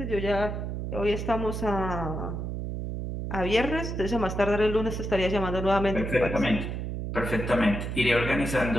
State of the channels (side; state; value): right; noise; hum, 4 dB below the sound